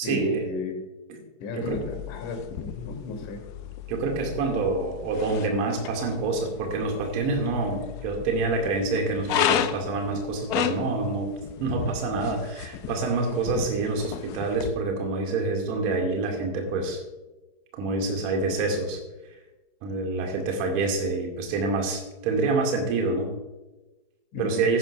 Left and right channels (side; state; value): left; late; 4.7 ms